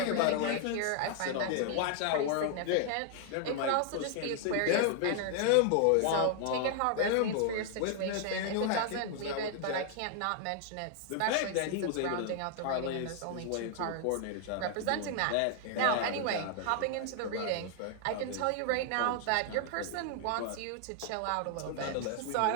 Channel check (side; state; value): both; different; correlation 0.00